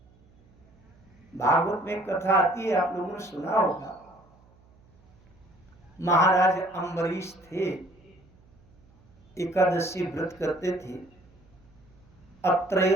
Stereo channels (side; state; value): right; noise; hum, 29 dB below the sound